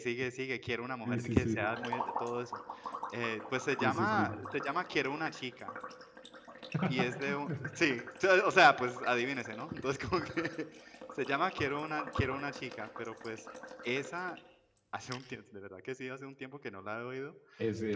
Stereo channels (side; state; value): both; identical; correlation 1.00